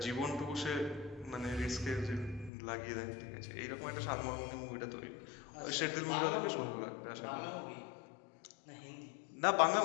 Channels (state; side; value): drops out; right; at 2.5 s